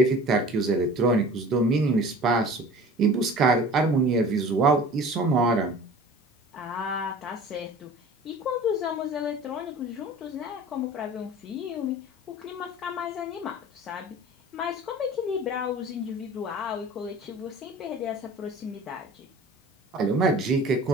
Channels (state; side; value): normal; both; correlation 0.42